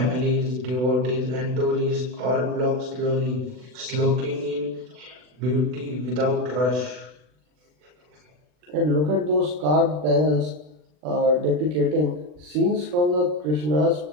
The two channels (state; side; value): late; left; 40 ms